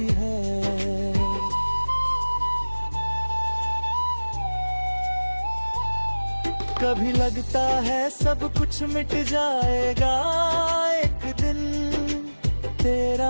है। कभी लगता है सब कुछ मिट जाएगा एक दिन,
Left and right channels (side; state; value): both; inverted; correlation -1.00